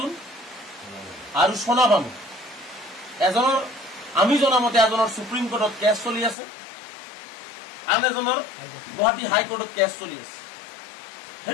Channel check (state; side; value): drops out; right; at 6.4 s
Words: আৰু সোনা বানু এজনৰ আমি জনামতে এজনৰ সুপ্ৰিম কোৰ্টত কেছ চলি আছে আন এজনৰ গুৱাহাটী হাইকোৰ্টত কেছ চলি আছে